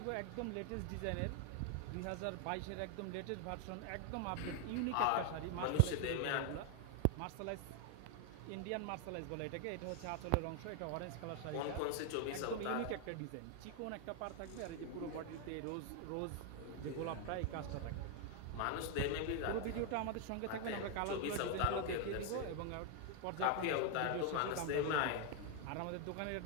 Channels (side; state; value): both; different; correlation 0.01